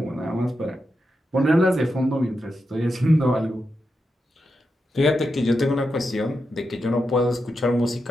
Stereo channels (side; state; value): both; normal; correlation 0.87